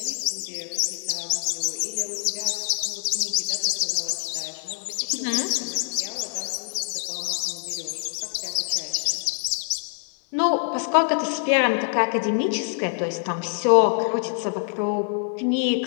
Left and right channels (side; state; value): right; silent; 62 dB below the other